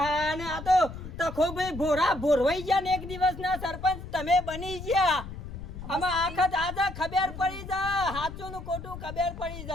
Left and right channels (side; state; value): left; noise; rumble, 11 dB below the sound